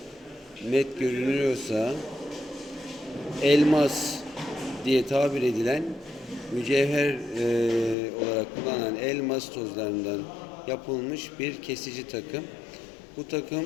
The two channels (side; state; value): right; drops out; at 8.0 s